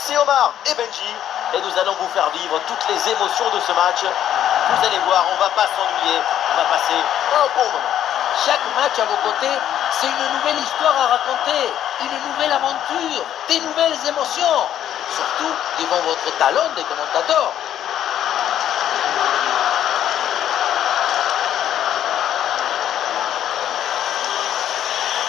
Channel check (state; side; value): quieter; right; 10.8 dB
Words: Omar et Benji. Et nous allons vous faire vivre toutes les émotions de ce match. Vous allez voir, on va pas s'ennuyer, on va passer un bon moment. Chaque match à vos côtés, c'est une nouvelle histoire à raconter, une nouvelle aventure, des nouvelles émotions. Surtout devant votre talent de commentateur.